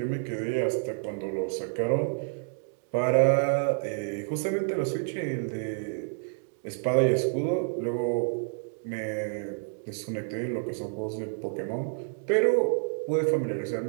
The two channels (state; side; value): silent; left; digital silence